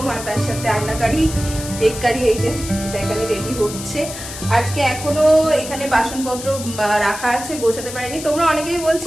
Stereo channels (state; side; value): noise; left; hiss, 10 dB below the sound